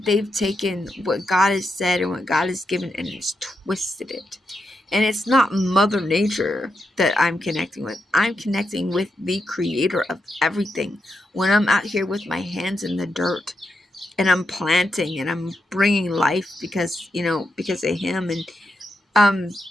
taken what God has said and what God has given and has twisted it. And it's not Mother Nature that I'm connecting with. I'm connecting with the creator of everything. When I'm out here with my hands in the dirt and I'm planting and I'm bringing life because of him, and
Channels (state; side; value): normal; both; correlation 0.84